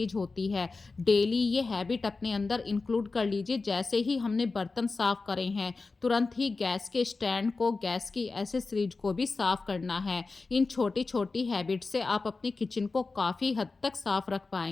होती है, डेली ये हैबिट अपने अंदर इंक्लूड कर लीजिए। जैसे ही हमने बर्तन साफ करे हैं, तुरंत ही गैस के स्टैंड को, गैस की एसेसरीज को भी साफ करना है। इन छोटी छोटी हैबिट से आप अपनी किचन को काफ़ी हद तक साफ रख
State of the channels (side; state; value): right; quieter; 3.9 dB